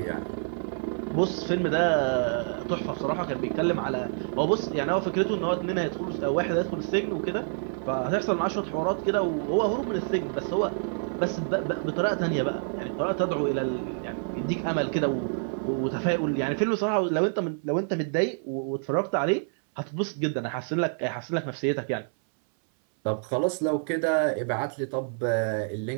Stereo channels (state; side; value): silent; left; 60 dB below the other